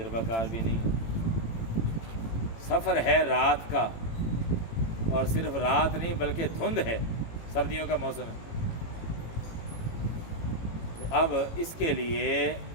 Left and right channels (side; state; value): right; late; 18 ms